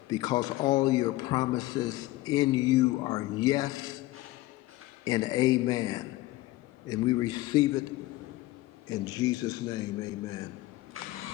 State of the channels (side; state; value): right; quieter; 18.1 dB